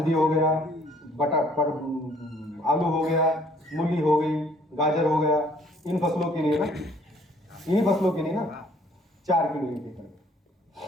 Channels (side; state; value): both; normal; correlation 0.60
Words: हो गया, आलू हो गया, मूली हो गई, गाजर हो गया, इन फसलों के लिए ना, इन्हीं फसलों के लिए ना 4 किलो 1 एकड़।